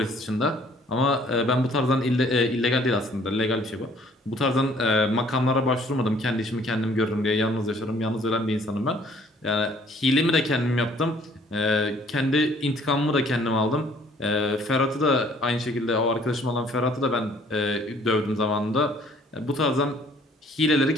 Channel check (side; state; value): both; normal; correlation 0.59